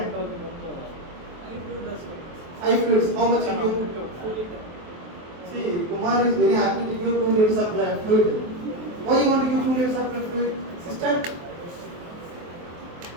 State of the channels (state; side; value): late; left; 23 ms